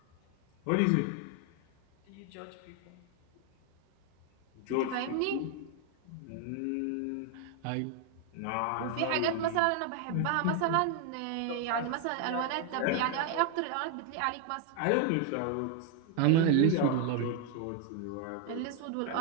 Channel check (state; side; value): different; both; correlation 0.01